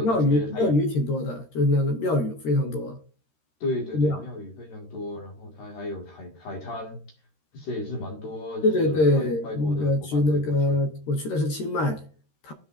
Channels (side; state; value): right; late; 13 ms